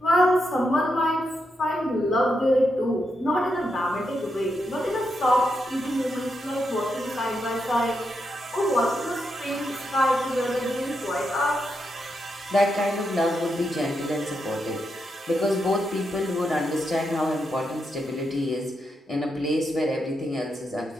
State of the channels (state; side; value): normal; both; correlation 0.83